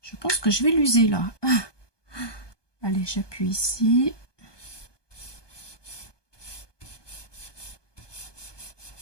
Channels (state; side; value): late; right; 1.2 ms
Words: Je pense que je vais l'user là. Allez, j'appuie ici.